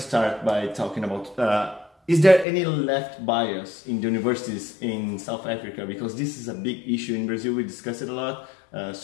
start by talking about, is there any left bias in the universities in South Africa? Because this is a big issue in Brazil, we discuss it a lot.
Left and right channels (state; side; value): drops out; right; at 2.5 s